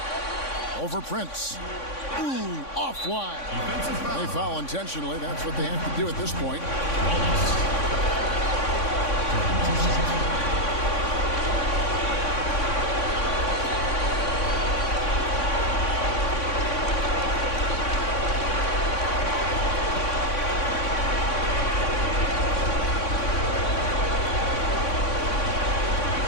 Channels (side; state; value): right; late; 3.6 ms